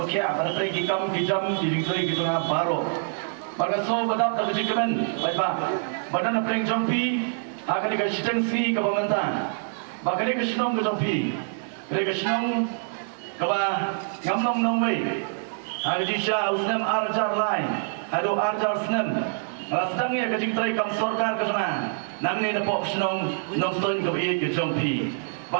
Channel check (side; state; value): left; silent; 59 dB below the other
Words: apa pergi kam kijam dijoi gitu na baru pada so bedak kejigiman baik badan apa yang jompi akan dikasih si ke pemerintah bahkan dikasih nong ke jompi dikasih nong kaba ngamnong nongway hari disha usnam arjar lain hado arjar snam sedangnya kecik terai kam sorkar ke sana nang ni napok senong nong stoin ke iit ke jompi